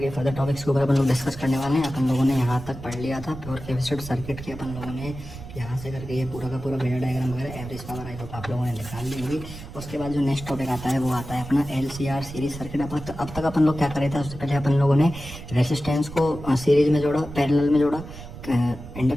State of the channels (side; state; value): right; noise; rumble, 13 dB below the sound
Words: फर्दर टॉपिक्स के ऊपर अपन लोग डिस्कस करने वाले हैं। अपन लोगों ने यहाँ तक पढ़ लिया था प्योर कैपेसिटर सर्किट की। अपन लोगों ने यहाँ से करके ये पूरा का पूरा फेजर डायग्राम वगैरह एवरेज पावर आई होप आप लोगों ने निकाल ली होगी। उसके बाद जो नेक्स्ट टॉपिक आता है वो आता है अपना LCR सीरीज सर्किट। अब तक अपन लोग क्या कर रहे थे, उससे पहले अपन लोगों ने रेसिस्टेंस को सीरीज में जोड़ा, पैरेलल में जोड़ा,